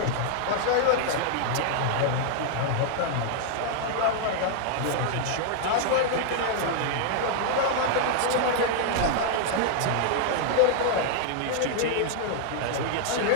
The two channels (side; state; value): both; different; correlation -0.01